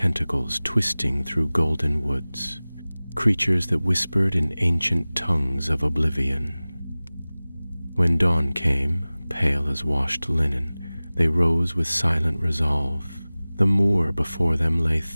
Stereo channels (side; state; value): both; inverted; correlation -0.99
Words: twisting through golden woods, creatures that whispered in ancient tongues of oblivion. When dawn came, pale as washed linen, they rose with silent resolve. The moor before them lay